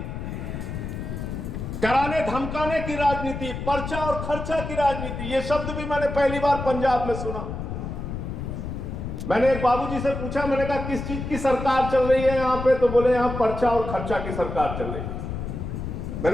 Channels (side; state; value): left; noise; rumble, 6 dB below the sound